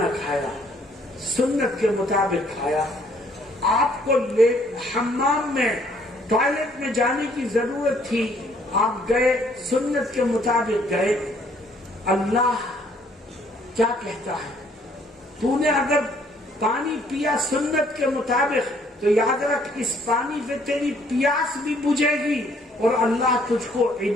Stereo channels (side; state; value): both; normal; correlation 0.63